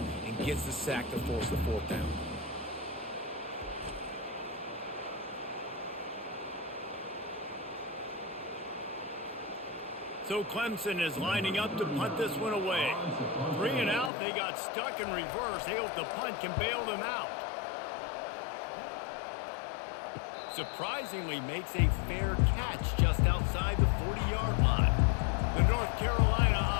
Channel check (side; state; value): right; drops out; at 14.1 s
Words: and gets the sack to force the 4th down. So Clemson is lining up to punt this one away. 3 and out, they got stuck in reverse. They hope the punt can bail them out. Surprisingly makes a fair catch just outside the 40-yard line. The North Carolina